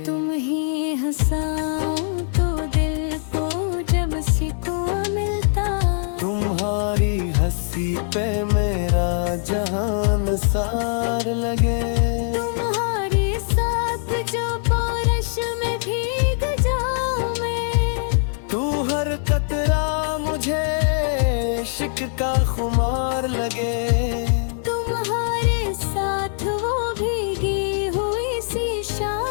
तुम ही हंसाओ तो दिल को जब सुकून मिलता, तुम्हारी हंसी पे मेरा जहान सार लगे। तुम्हारे साथ जो बारिश में भीग जाऊं मैं, तू हर कतरा मुझे इश्क का खुमार लगे। तुम्हारे साथ वो भीगी हुई सी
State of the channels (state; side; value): silent; right; 60 dB below the other